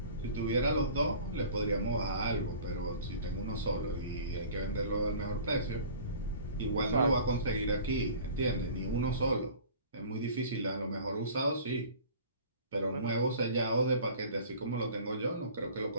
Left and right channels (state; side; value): inverted; both; correlation -0.45